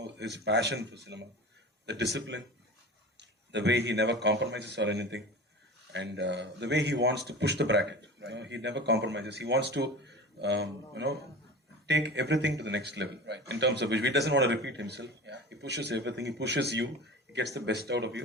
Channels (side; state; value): both; normal; correlation 0.34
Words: his passion for cinema, the discipline, the way he never compromises or anything, and the way he wants to push the bracket. You know, he never compromises. He wants to, take everything to the next level. In terms of which he doesn't want to repeat himself. He pushes everything. He pushes you. He gets the best out of